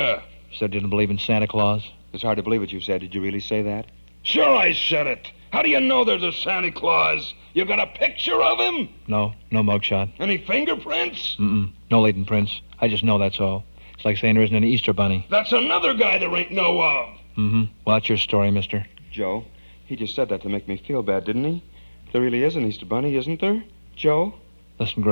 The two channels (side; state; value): both; inverted; correlation -1.00